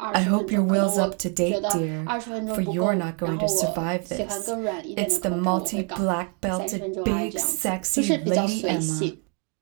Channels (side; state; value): left; quieter; 35.4 dB